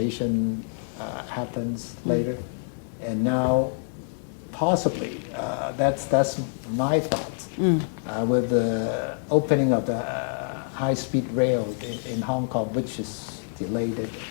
happens later, and now possibly that's my thoughts with the opening of the high-speed rail in Hong Kong, which is delayed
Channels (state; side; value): silent; right; digital silence